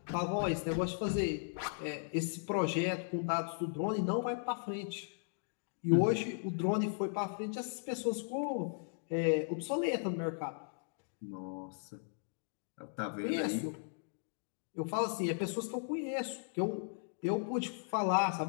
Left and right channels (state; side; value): silent; right; digital silence